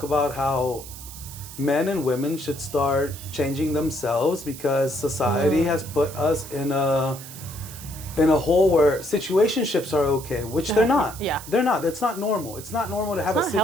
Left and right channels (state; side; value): noise; right; hiss, 14 dB below the sound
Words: about how men and women should start changing themselves because society has put us in a hole where situationships are okay, which they're not. Yeah. They're not. That's not normal. It's not normal to have a